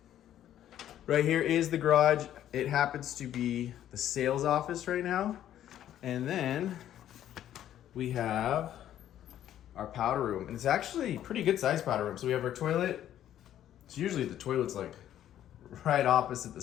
Right here is the garage. It happens to be the sales office right now. And then we have our powder room. And it's actually a pretty good sized powder room. So we have our toilet. So usually the toilet's like right opposite the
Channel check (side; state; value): right; quieter; 11.4 dB